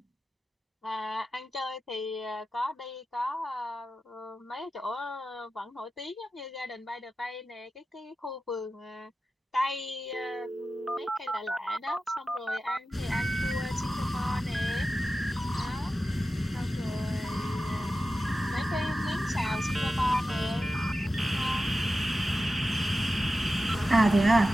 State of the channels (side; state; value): both; normal; correlation 0.93